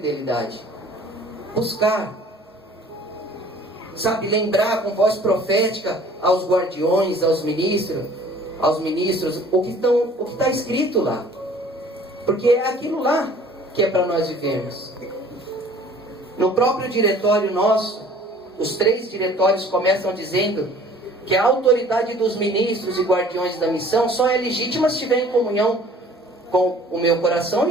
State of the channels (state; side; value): normal; both; correlation 0.51